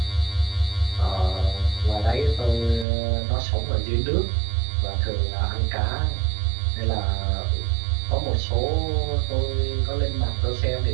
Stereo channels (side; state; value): left; drops out; at 2.9 s